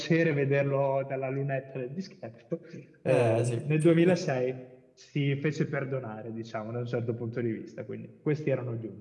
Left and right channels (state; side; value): identical; both; correlation 1.00